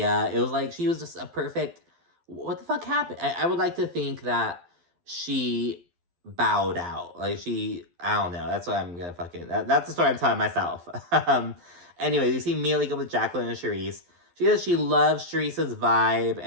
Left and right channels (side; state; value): left; late; 12 ms